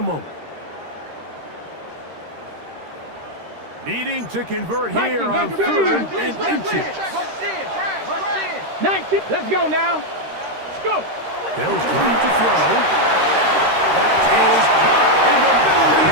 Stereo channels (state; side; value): late; left; 13 ms